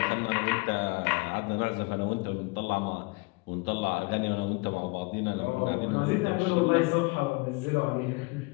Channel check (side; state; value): right; quieter; 27.4 dB